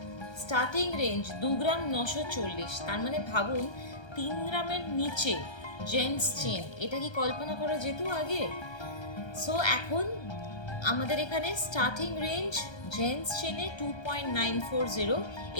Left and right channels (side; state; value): right; late; 1.3 ms